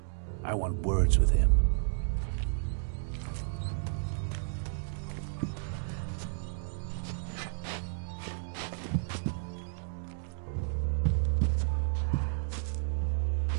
I want words with him.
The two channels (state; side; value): silent; left; digital silence